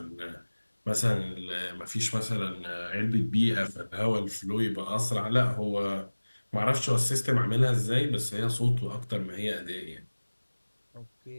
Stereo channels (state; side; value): inverted; both; correlation -1.00